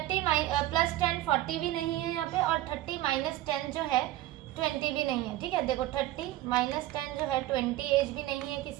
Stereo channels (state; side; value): quieter; left; 15.4 dB